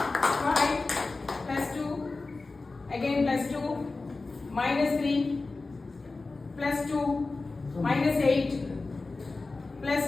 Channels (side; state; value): right; quieter; 3.6 dB